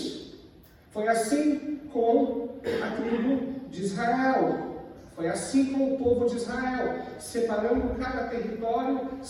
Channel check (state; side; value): identical; both; correlation 1.00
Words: Foi assim com a tribo de Israel. Foi assim com o povo de Israel, separando cada território